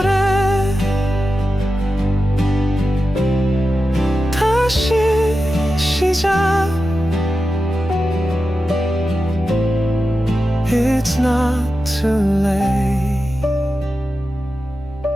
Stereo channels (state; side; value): normal; both; correlation 0.92